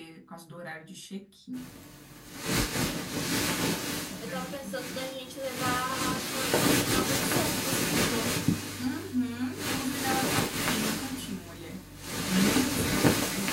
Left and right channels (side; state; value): both; identical; correlation 1.00